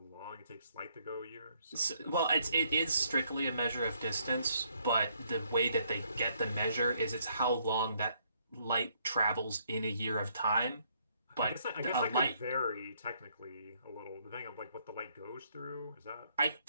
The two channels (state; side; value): inverted; both; correlation -0.69